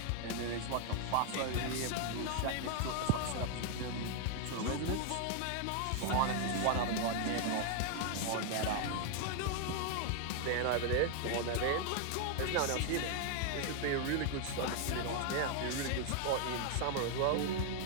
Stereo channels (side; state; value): both; different; correlation 0.00